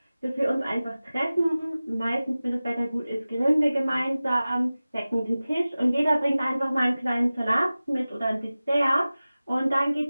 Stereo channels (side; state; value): both; inverted; correlation -0.97